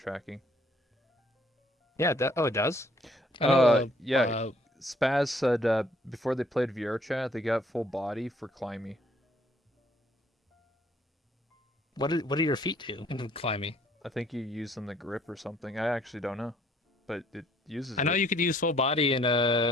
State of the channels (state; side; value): normal; both; correlation 0.63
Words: Yeah. Oh, it does. I know. Yeah. Spaz said before they played VR chat, they got full body for Climby. What do your feet do in climbing? I think you use them the grip or something. I actually don't know, but it uses I know it. you could use full body in